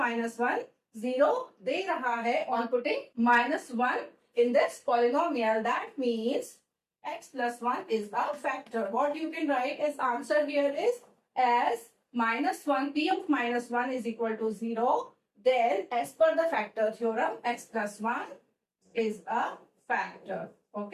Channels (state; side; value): identical; both; correlation 1.00